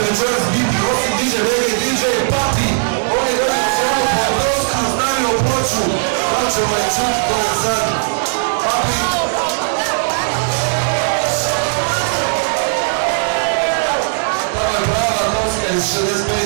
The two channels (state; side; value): silent; left; 58 dB below the other